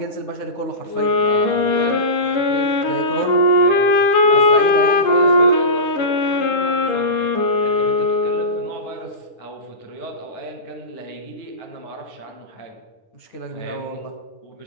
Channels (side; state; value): right; late; 9.8 ms